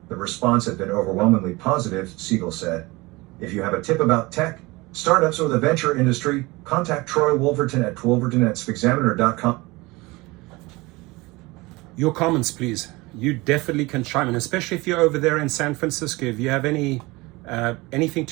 The response had been overwhelmingly positive, Siegel said. If you have a tip about tech, startups, or the venture industry, contact Troy Wolverton at wolverton@spexaminer.com. Your comments, please. You definitely can chime in, especially if you're over there in San Francisco. If you have anything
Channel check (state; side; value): quieter; left; 22.8 dB